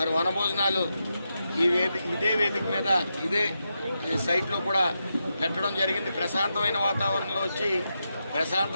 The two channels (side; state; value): both; inverted; correlation -0.86